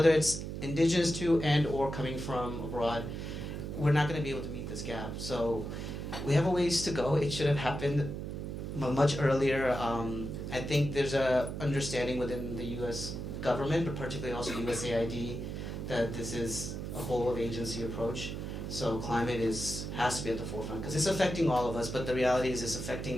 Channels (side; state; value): right; noise; hum, 6 dB below the sound